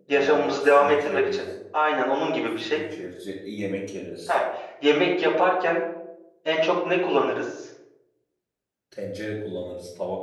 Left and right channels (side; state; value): both; identical; correlation 1.00